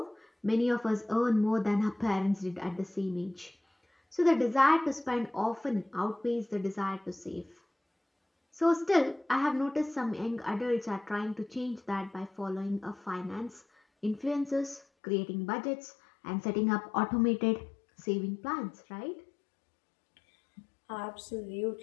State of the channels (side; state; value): right; drops out; at 14.9 s